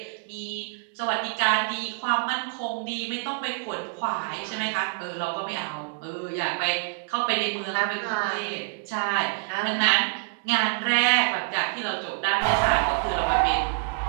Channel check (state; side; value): silent; left; digital silence